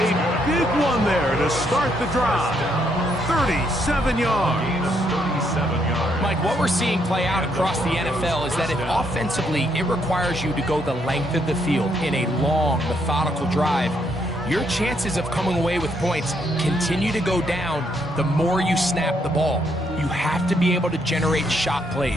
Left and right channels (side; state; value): both; normal; correlation 0.74